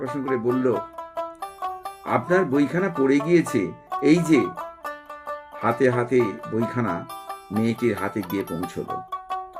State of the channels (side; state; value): both; identical; correlation 1.00